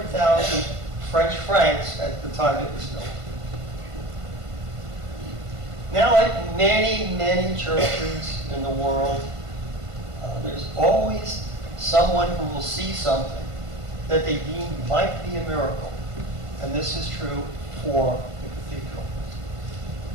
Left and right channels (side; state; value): left; late; 1.5 ms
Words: French francs at the time it was built. Now, like many, many churches in the world, there's always someone who will see something that they deem might be a miracle. And this is true for the cathedral.